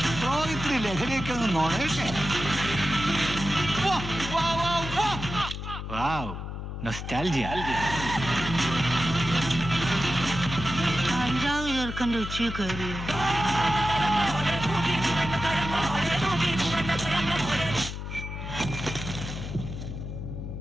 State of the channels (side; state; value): left; noise; hum, 7 dB below the sound